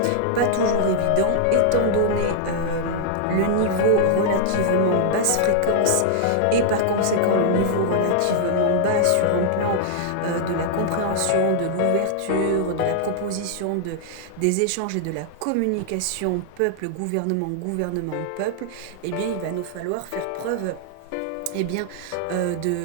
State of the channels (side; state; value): both; different; correlation -0.01